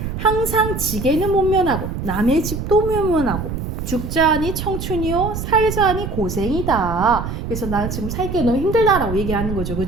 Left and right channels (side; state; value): right; noise; rumble, 5 dB below the sound